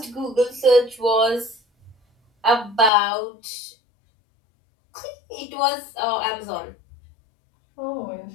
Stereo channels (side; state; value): right; drops out; at 2.9 s